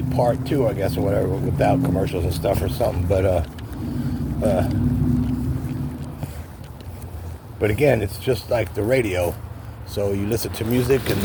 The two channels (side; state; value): both; identical; correlation 1.00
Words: part too, I guess, or whatever, without commercials and stuff or something. But again, it's just like the radio. So you listen to music and